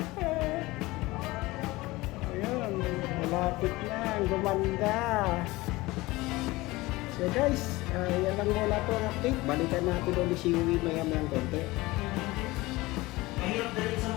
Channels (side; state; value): right; quieter; 20.5 dB